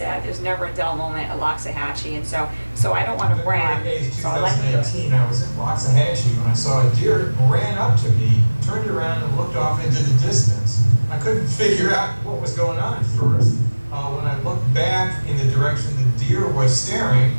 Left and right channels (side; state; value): both; inverted; correlation -1.00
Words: there's never a dull moment at Loxahatchee. And so I don't want to brag. So I like 2018, I was in Loxahatchee when I saw a deer ran up to me, turned around and looked off into the distance. I couldn't figure out what was going on at first. When I looked back in the direction the deer was staring,